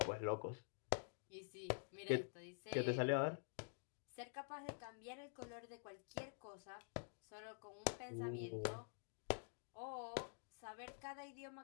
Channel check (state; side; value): silent; right; digital silence